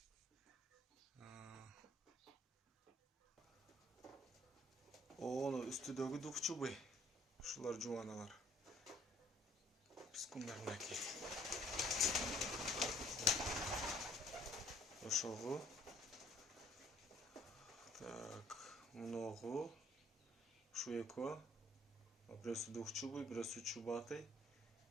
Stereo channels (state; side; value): normal; both; correlation 0.60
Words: Оны үстүдөгү двухчубый. Ушулар жубаналар. Пискундарнаки. Ошого. Так, мыногу ушу экөө. Бирөөсү двухчубый, бирөөсү чубатый.